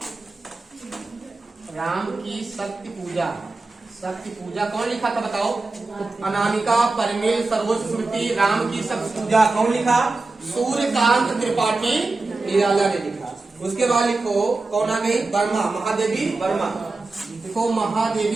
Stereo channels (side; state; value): left; quieter; 3.5 dB